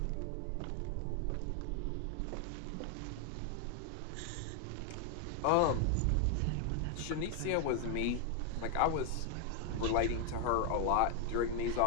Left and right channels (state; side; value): different; both; correlation 0.00